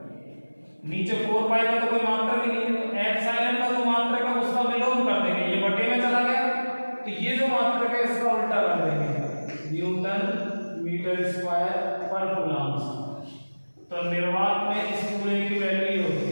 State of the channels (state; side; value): inverted; both; correlation -1.00